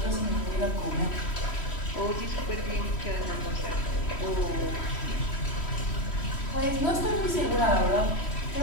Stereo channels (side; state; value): right; late; 3.1 ms